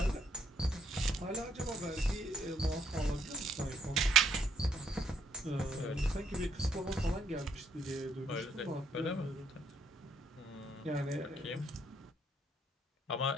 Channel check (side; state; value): both; normal; correlation 0.69